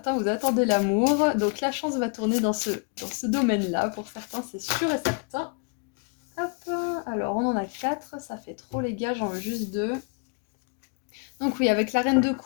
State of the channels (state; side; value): quieter; right; 36.6 dB